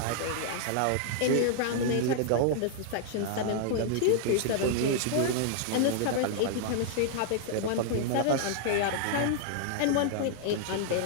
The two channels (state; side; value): different; both; correlation -0.01